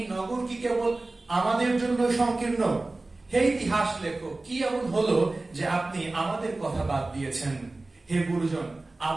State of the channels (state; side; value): quieter; left; 3.1 dB